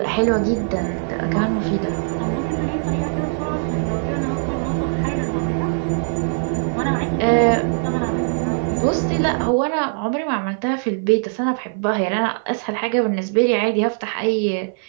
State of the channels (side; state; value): left; silent; 57 dB below the other